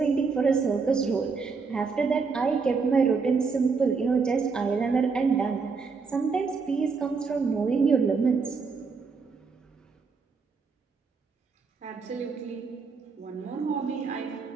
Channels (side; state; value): left; quieter; 4.9 dB